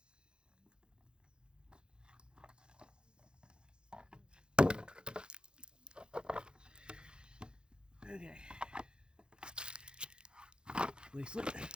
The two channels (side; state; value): left; late; 0.049 ms